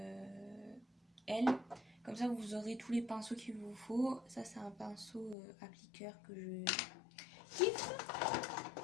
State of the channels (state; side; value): drops out; right; at 5.4 s